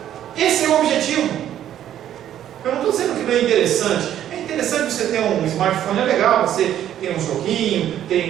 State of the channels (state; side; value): quieter; left; 11.1 dB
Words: Esse é o objetivo. Eu não estou dizendo que não é interessante. É interessante você ter um smartphone, é legal, você tem um joguinho,